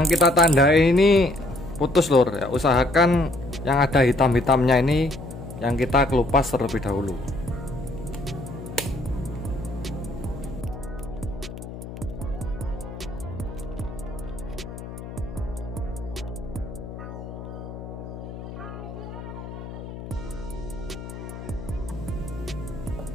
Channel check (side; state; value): left; noise; hum, 11 dB below the sound